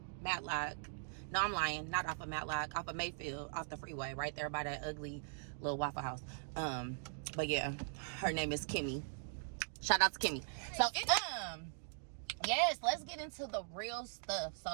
Matlock. No, I'm lying. Not off of Matlock. Off of Mayfield. Off the freeway. Right there by that ugly little Waffle House. But yeah, her name is Kimmy. Shout out to Kimmy. So yes, let's get into the real stuff. So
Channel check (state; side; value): silent; left; digital silence